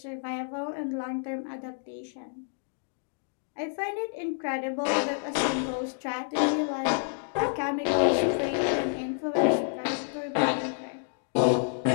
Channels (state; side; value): silent; right; digital silence